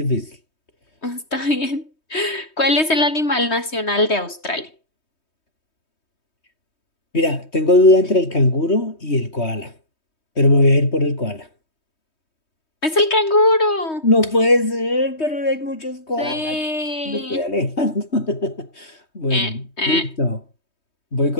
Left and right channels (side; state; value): right; late; 3.2 ms